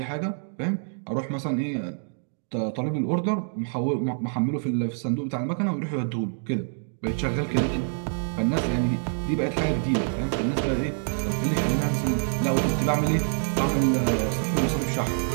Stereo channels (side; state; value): left; silent; digital silence